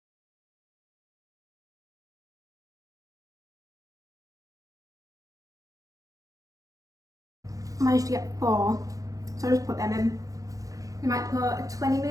I managed to get 4, so I'll just put them in. I might put a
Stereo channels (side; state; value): left; late; 0.17 ms